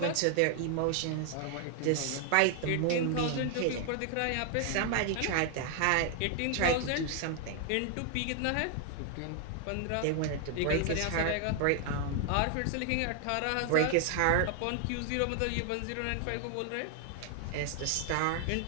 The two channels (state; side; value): different; both; correlation 0.00